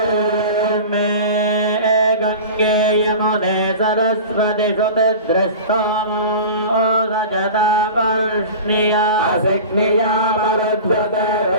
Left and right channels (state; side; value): inverted; both; correlation -0.34